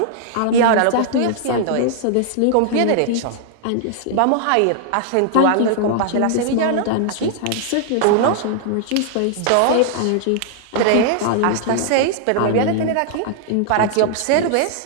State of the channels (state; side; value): different; both; correlation -0.01